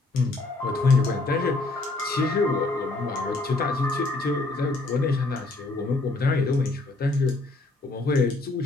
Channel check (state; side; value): quieter; right; 3.1 dB